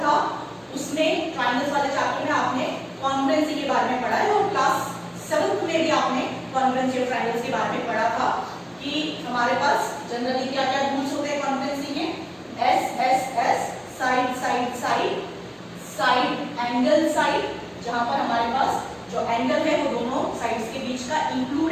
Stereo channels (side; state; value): both; identical; correlation 1.00